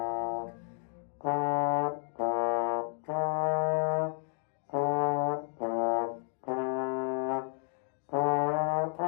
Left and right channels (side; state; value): right; silent; digital silence